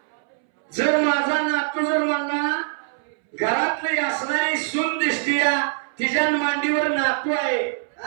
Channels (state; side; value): silent; left; 63 dB below the other